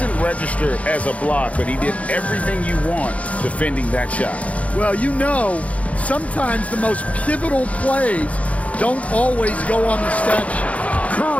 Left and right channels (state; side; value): late; right; 0.066 ms